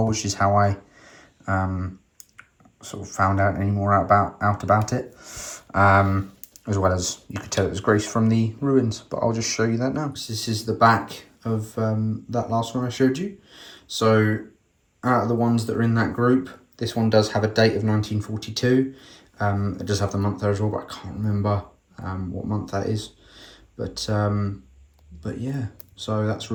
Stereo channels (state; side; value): identical; both; correlation 1.00